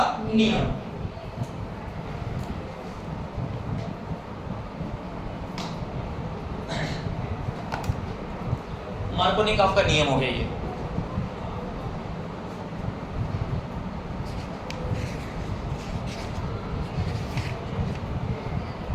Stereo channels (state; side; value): identical; both; correlation 1.00